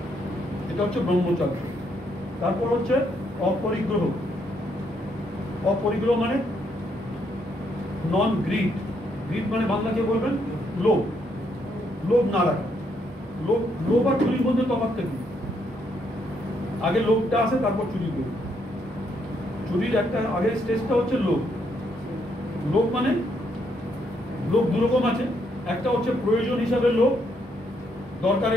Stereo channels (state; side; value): normal; both; correlation 0.74